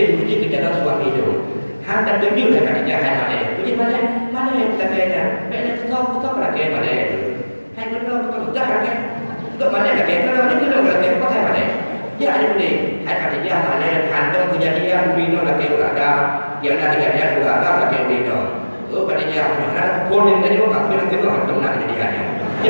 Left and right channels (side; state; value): both; inverted; correlation -1.00